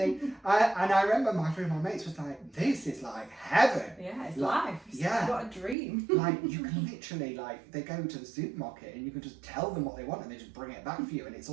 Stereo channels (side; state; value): left; drops out; at 5.8 s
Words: And I remember my mates was like, this is like heaven. Yeah, it's life. What a dream. Like, you can literally, like, they go to the supermarket and you can just tell them what they want and they just bring it back for you, and it's